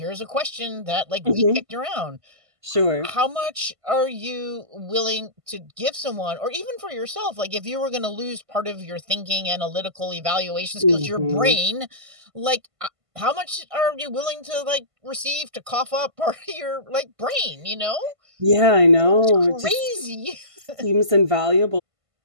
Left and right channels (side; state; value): left; late; 1.5 ms